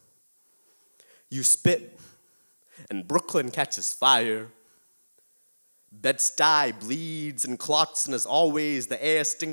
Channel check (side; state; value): both; inverted; correlation -1.00